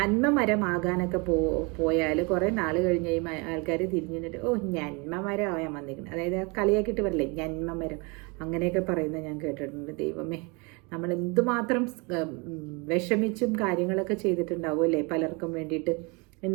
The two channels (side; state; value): left; quieter; 29.7 dB